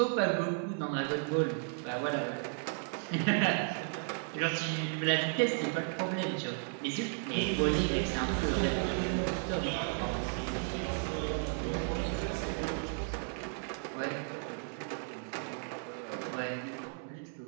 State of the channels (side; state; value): left; silent; 55 dB below the other